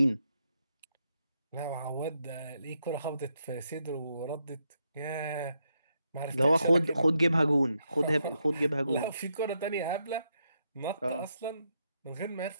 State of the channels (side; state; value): both; inverted; correlation -0.80